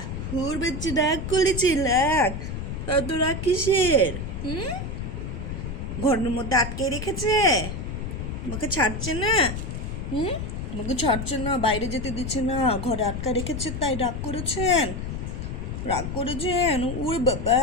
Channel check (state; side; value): noise; left; rumble, 5 dB below the sound